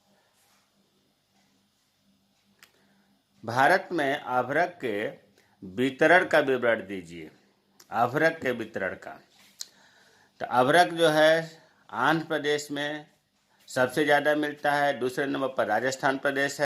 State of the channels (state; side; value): identical; both; correlation 1.00